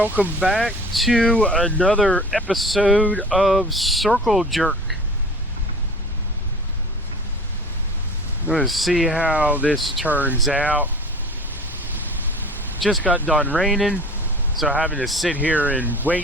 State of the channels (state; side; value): normal; both; correlation 0.42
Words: back to another episode of Circle Jerk. Let's see how this turns out. Just got done raining, so having to sit here and